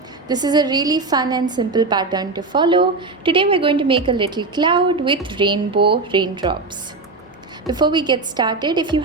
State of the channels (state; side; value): quieter; left; 3.6 dB